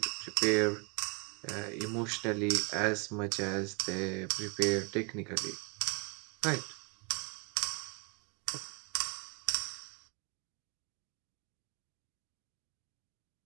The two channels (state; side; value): quieter; left; 33.5 dB